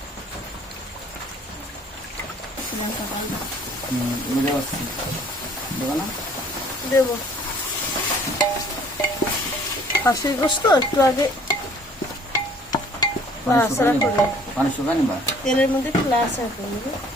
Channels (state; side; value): normal; both; correlation 0.56